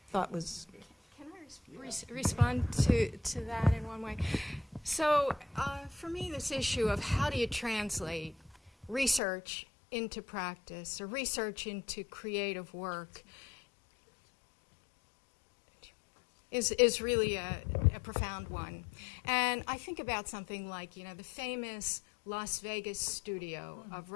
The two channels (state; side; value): drops out; right; at 9.2 s